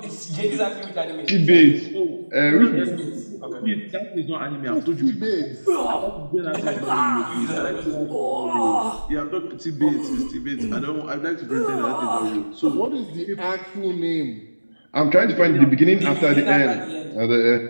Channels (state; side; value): inverted; both; correlation -1.00